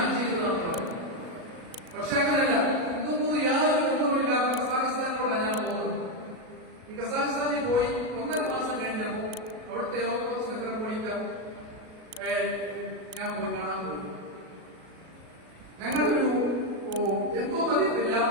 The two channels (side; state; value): left; late; 37 ms